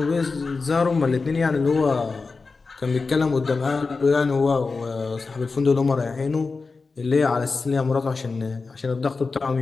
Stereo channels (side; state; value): right; quieter; 4.2 dB